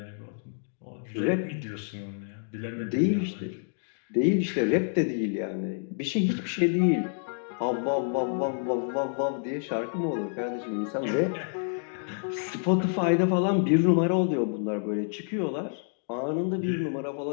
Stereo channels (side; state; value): right; silent; digital silence